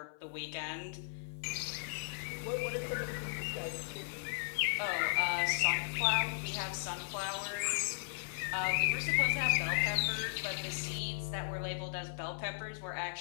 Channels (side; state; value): right; silent; 53 dB below the other